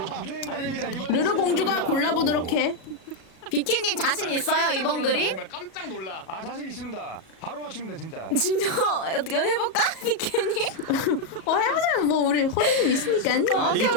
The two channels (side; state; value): right; late; 37 ms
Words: 아닙니다. 이번 르르 공주가 골라보도록 해. 비키님 자신 있어요 이번 그림? 깜짝 놀라. 아 자신 있습니다. 바로 맞춥니다 진짜. 진짜 어떻게 해볼까 비키님? 해보자. 뭐 우리 호두님 있으니까.